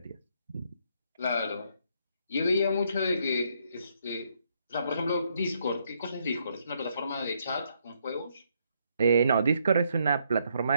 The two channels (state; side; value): inverted; both; correlation -0.73